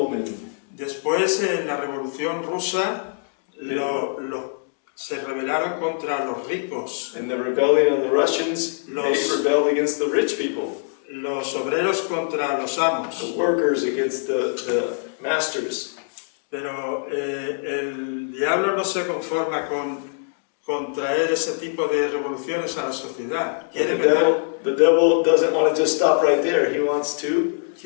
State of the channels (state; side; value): silent; right; digital silence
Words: Después, en la Revolución Rusa, se rebelaron contra los ricos, In the rebellion of the Russians, they rebelled against the rich people, los obreros contra los amos. the workers against the masters. Pero el diablo no se conforma con traer ese tipo de revoluciones a la sociedad. The devil doesn't want to just stop right there. He wants